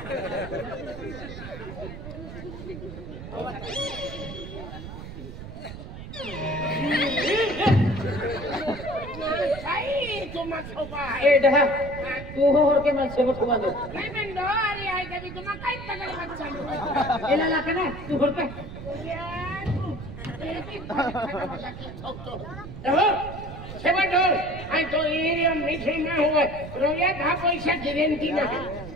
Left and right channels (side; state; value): right; noise; rumble, 11 dB below the sound